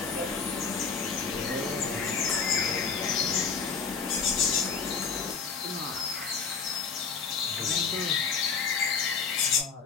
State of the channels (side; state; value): right; quieter; 5.5 dB